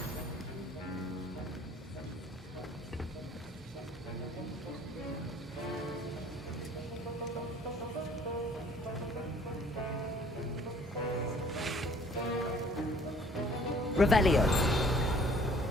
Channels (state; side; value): normal; both; correlation 0.56